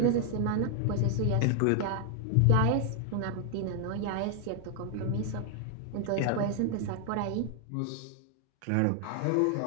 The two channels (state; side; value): different; both; correlation 0.00